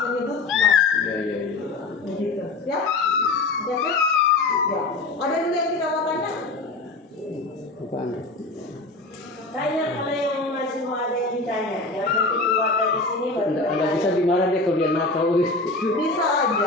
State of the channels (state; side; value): quieter; right; 3.4 dB